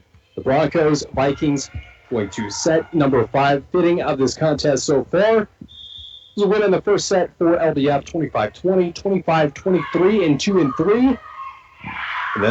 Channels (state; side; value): identical; both; correlation 1.00